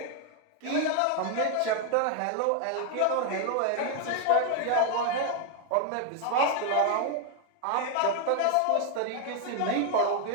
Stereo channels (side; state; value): both; different; correlation 0.00